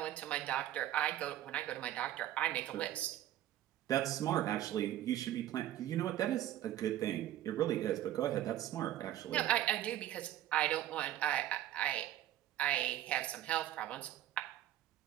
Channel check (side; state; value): left; quieter; 12.9 dB